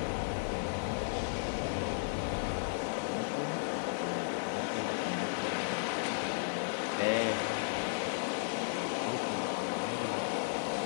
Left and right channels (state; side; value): silent; right; digital silence